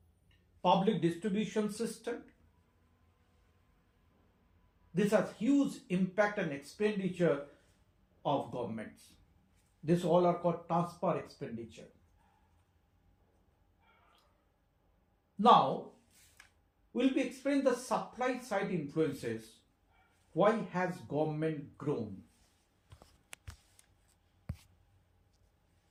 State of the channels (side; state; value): both; identical; correlation 1.00